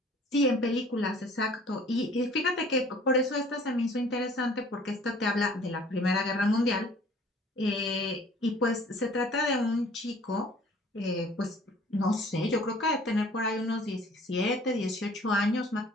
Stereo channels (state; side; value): normal; both; correlation 0.52